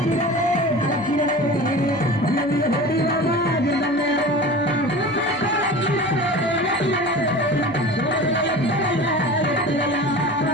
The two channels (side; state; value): right; noise; hum, 23 dB below the sound